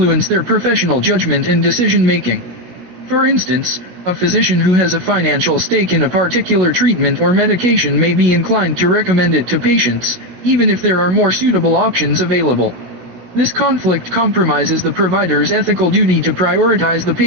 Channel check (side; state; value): left; late; 17 ms